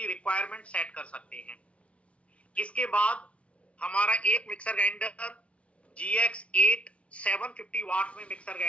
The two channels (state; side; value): late; right; 0.062 ms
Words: requirement set कर सकते हैं। इसके बाद हमारा एक मिक्सर ग्राइंडर GX8 750 वाट में मिक्सर